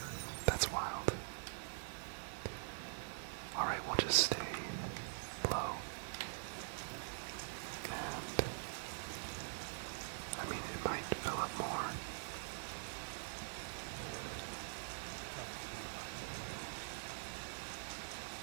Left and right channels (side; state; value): left; silent; digital silence